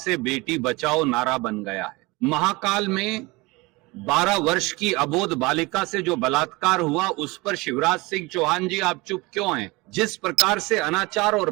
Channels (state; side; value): quieter; left; 23.8 dB